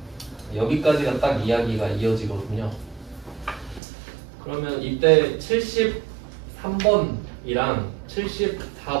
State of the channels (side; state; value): left; drops out; at 3.8 s